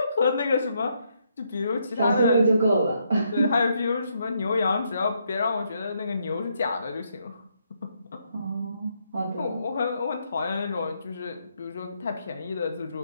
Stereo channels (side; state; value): both; inverted; correlation -0.76